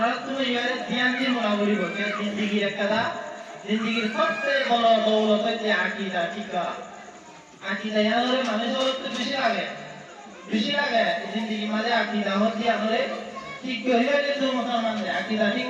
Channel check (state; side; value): identical; both; correlation 1.00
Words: তুমি ইয়ারে ধ্যান দিয়ে মনে করিব যে জিন্দেগির একটা জিন্দেগির সবচেয়ে বড় দৌলত যে আকীদা ঠিক আকীদা ইয়ারে মানুষের তো বেশি লাগে জিন্দেগি মাঝে আকীদা হচ্ছে আমাদের ঠিক হইলে যে মুসলমান আকীদা ঠিক